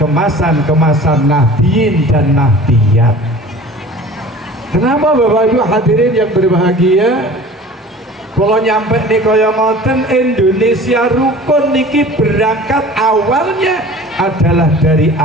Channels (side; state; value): both; normal; correlation 0.43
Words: Nahdliyin dan Nahdliyat. Kenapa Bapak Ibu hadirin yang berbahagia? Kalau nyampe nih kaya ngoten, Indonesia rukun niki berangkat awalnya adalah dari